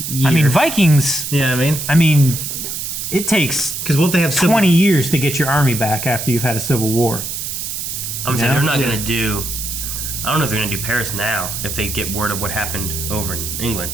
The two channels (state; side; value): noise; right; hiss, 5 dB below the sound